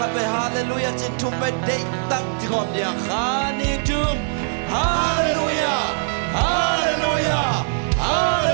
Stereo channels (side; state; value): left; silent; 65 dB below the other